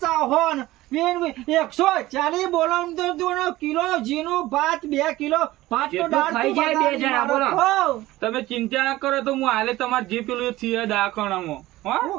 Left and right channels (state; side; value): quieter; left; 17.2 dB